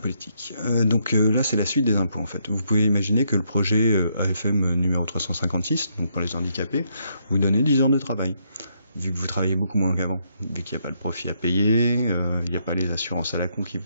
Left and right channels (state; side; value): inverted; both; correlation -0.75